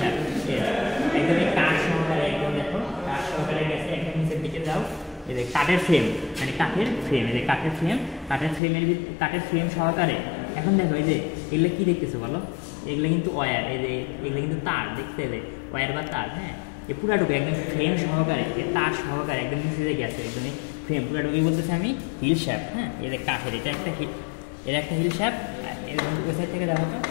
একদম এই কাঠ সহকারে, একদম দেখো কাঠ সহকারে গেছে, একদম নিচের দিকে যাও, এই যে কাঠের ফ্রেম, মানে কাঠের ফ্রেম, এই যে কাঠের ফ্রেম সহকারে। এখন দেখো এই যে এগুলো কি দেখতেছো বলো, এগুলো কিন্তু ওয়্যার, এই যে এগুলো কিন্তু তার, দেখতে এলে ওয়্যার বা তার। হ্যাঁ এই পুরাটুকু একদম ফ্রেম সহকারে, এই তার সহকারে একদম নিচে গেছে, একদম ফ্রেম পুরাটুকুই বলতেছে আমি হিল শ্যাফট। হ্যাঁ এই যে কাঠের এটা একটা হিল শ্যাফট, ওই সাইড থেকে দেখো তো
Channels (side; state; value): right; drops out; at 8.6 s